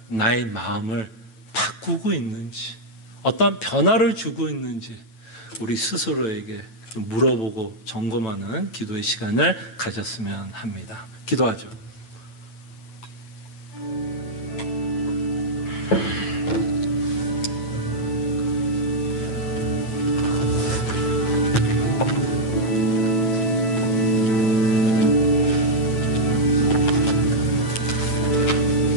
나의 마음을 바꾸고 있는지 어떤 변화를 주고 있는지 우리 스스로에게 좀 물어보고 점검하는 기도의 시간을 가졌으면 합니다. 기도하죠.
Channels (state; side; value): late; right; 9.1 ms